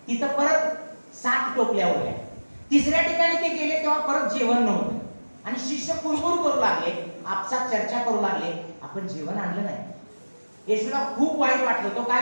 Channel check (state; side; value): inverted; both; correlation -1.00